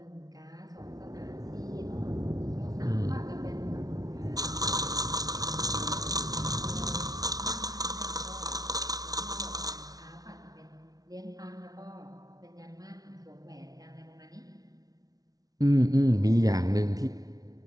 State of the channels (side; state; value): left; late; 0.18 ms